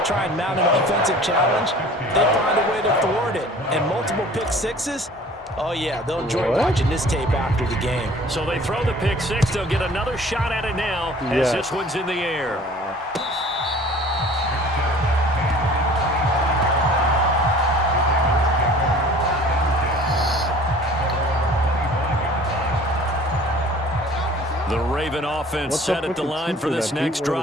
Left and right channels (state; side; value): normal; both; correlation 0.48